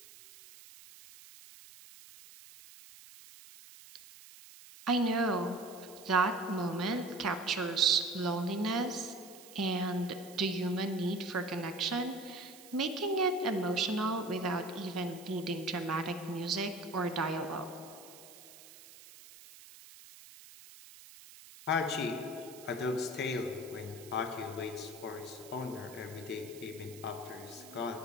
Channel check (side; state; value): right; noise; hiss, 18 dB below the sound